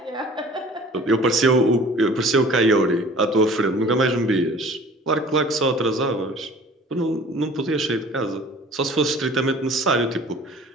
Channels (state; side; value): normal; both; correlation 0.47